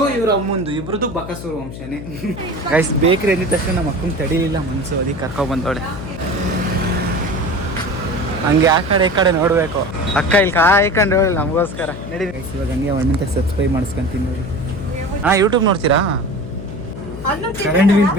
ಇವ್ರ ಅಮ್ಮಂದು ಇಬ್ರದ್ದು ಬಕಾಸೂರು ವಂಶನೇ. ಗೈಸ್ ಬೇಕ್ರಿ ಅಂದಿದ ತಕ್ಷಣ ನಮ್ಮ ಅಕ್ಕನ ತಡಿಲಿಲ್ಲ ಮನ್ಸು, ಅದಕ್ಕೆ ಕರ್ಕೊ ಬಂದವಳೆ. ಹಂಗೆ ಆ ಕಡೆ ಈ ಕಡೆ ನೋಡ್ಬೇಕು. ಅಕ್ಕ ಇಲ್ಲಿ ಕಾಯ್ಕೊಂಡು ಹೇಳಿ ನಮಗೋಸ್ಕರ ನಡಿ. ಗೈಸ್ ಇವಾಗ ಹಂಗೆ ಒಣ್ಣಂತ ಸಬ್ಸ್ಕ್ರೈಬ್ ಮಾಡಿಸ್ಕೊಂತೀನಿ ನೋಡಿ. ಯೂಟ್ಯೂಬ್ ನೋಡ್ತೀರಾ? ಕರೆಂಟ್ ಬಿಲ್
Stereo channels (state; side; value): noise; left; hum, 11 dB below the sound